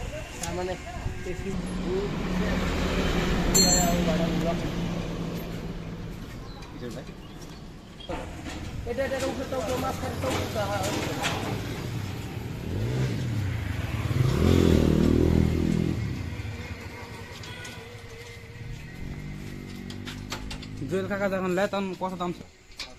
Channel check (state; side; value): identical; both; correlation 1.00